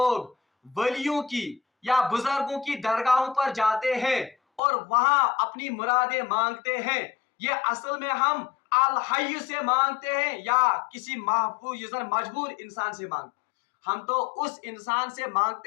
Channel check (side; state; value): right; drops out; at 4.6 s